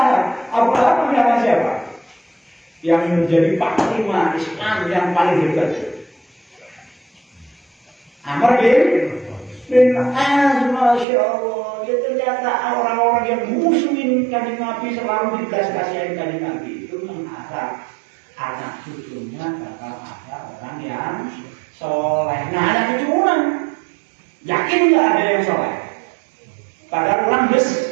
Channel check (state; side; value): drops out; left; at 11.1 s